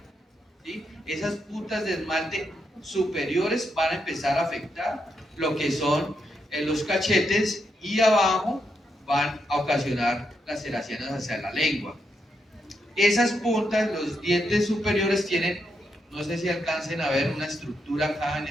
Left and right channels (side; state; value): both; normal; correlation 0.82